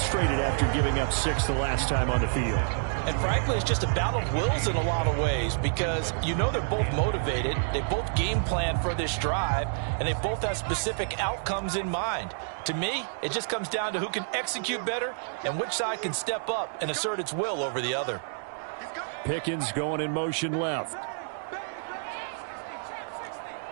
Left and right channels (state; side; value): silent; left; digital silence